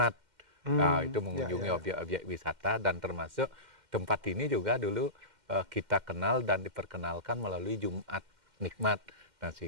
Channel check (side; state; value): left; late; 2.1 ms